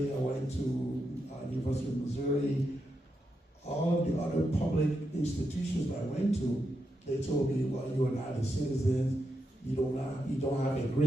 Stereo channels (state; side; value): normal; both; correlation 0.84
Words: I went to University of Missouri, all of the other public institutions that I went to, they told me, well, you are not a citizen, you don't have a